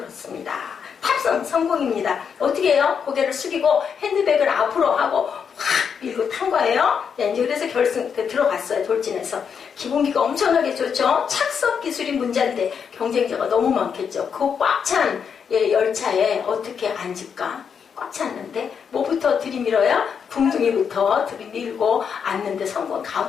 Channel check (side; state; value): right; quieter; 6.9 dB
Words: 탑승 성공입니다. 어떻게 해요? 고개를 숙이고 핸드백을 앞으로 하고 확 밀고 탄 거예요. 네, 이제 그래서 결승 들어갔어요. 돌진해서. 기본기가 엄청나게 좋죠. 착석 기술이 문제인데 경쟁자가 너무 많겠죠. 그 꽉 찬 열차에 어떻게 앉을까? 꽉 찼는데 뭐부터 들이밀어야? 궁둥이부터 들이밀고 앉는데 성공.